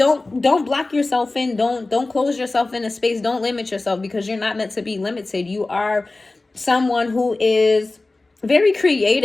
block yourself in. Don't close yourself in a space. Don't limit yourself, because you're not meant to be limited. You are someone who is very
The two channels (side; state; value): right; quieter; 3.2 dB